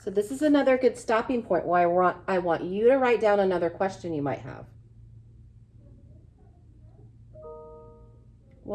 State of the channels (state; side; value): identical; both; correlation 1.00